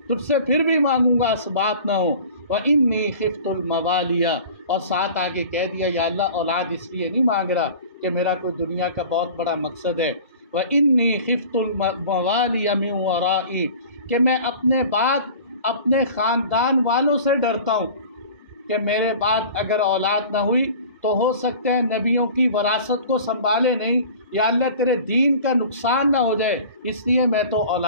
سے پھر بھی مانگوں گا اسباب نہ ہو۔ وَإِنِّي خِفْتُ الْمَوَالِيَ، اور ساتھ آگے کہہ دیا یا اللہ اولاد اس لیے نہیں مانگ رہا کہ میرا کوئی دنیا کا بہت بڑا مقصد ہے۔ وَإِنِّي خِفْتُ الْمَوَالِيَ مِنْ وَرَائِي، کہ میں اپنے بعد اپنے خاندان والوں سے ڈرتا ہوں کہ میرے بعد اگر اولاد نہ ہوئی تو ہو سکتا ہے نبیوں کی وراثت کو سنبھالے نہیں، یا اللہ تیرے دین کا نقصان نہ ہو جائے، اس لیے میں تو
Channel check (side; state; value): both; inverted; correlation -0.42